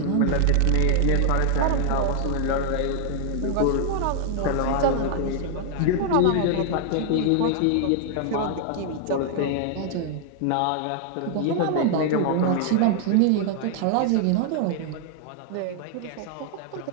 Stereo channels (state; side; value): different; both; correlation -0.01